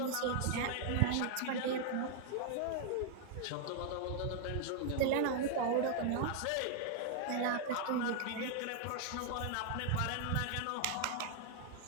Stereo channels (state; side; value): different; both; correlation 0.00